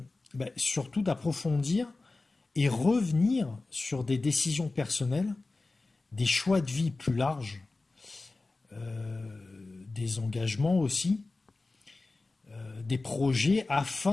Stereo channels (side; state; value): right; quieter; 3.4 dB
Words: surtout d'approfondir et revenir sur des décisions personnelles, des choix de vie plus larges, des engagements aussi, des projets